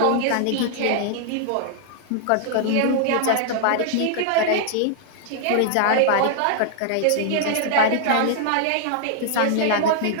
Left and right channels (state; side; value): different; both; correlation -0.01